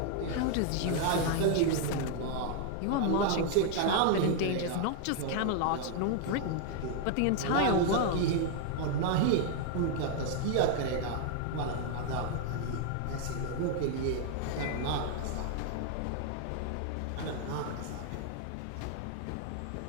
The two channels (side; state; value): both; different; correlation 0.00